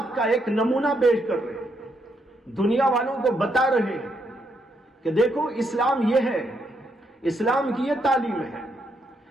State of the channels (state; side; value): normal; both; correlation 0.77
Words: کا ایک نمونہ پیش کر رہے ہیں، دنیا والوں کو بتا رہے ہیں کہ دیکھو اسلام یہ ہے، اسلام کی یہ تعلیم ہے،